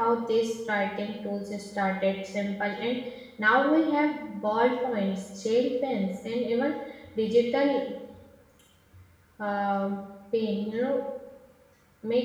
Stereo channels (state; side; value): identical; both; correlation 1.00